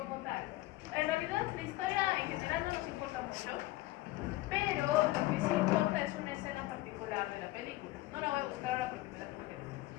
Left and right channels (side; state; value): right; quieter; 18.2 dB